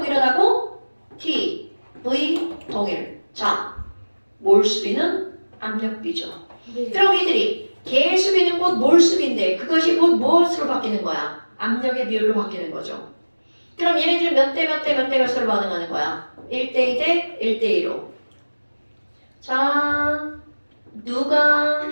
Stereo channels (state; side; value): inverted; both; correlation -1.00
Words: T, V 동일. 자, 몰수비는 압력비죠. 네. 그럼 이들이 개수비는 곧 몰수비인데 그것이 곧 무엇으로 바뀌는 거야? 압력의 비율로 바뀌는 거죠. 그럼 얘네들 몇 대 몇 대 몇 대 몇으로 반응하는 거야? 1대 2 대 1대 2로. 자, 누가